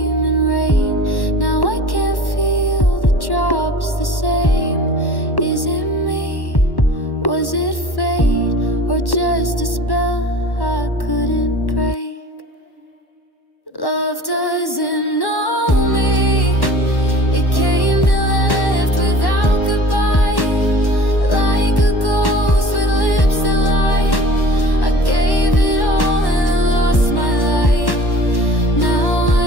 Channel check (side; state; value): right; late; 1.1 ms